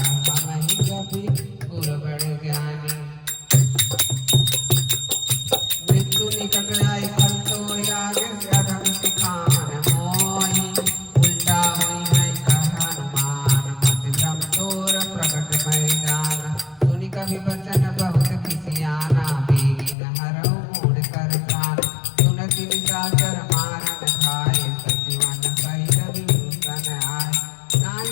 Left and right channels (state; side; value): drops out; right; at 20.0 s